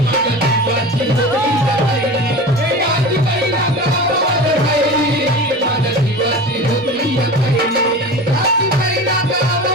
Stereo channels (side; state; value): both; normal; correlation 0.32